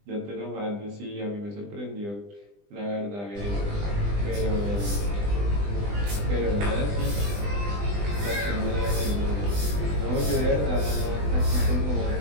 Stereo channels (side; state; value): left; late; 20 ms